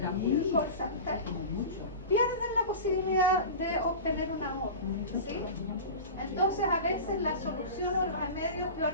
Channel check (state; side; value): inverted; both; correlation -0.30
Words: call center, pierden la posibilidad de obtener una nota, ¿sí? Entonces a veces la solución o el remedio es peor